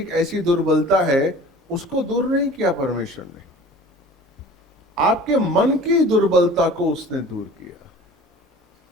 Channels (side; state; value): both; normal; correlation 0.44